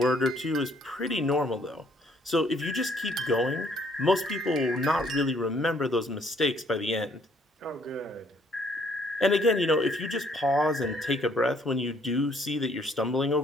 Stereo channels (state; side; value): normal; both; correlation 0.65